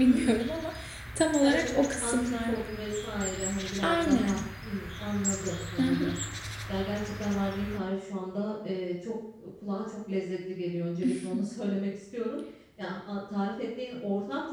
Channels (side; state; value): both; identical; correlation 1.00